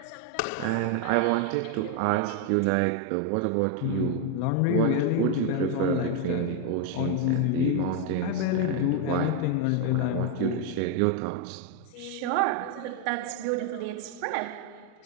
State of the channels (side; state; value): both; different; correlation 0.01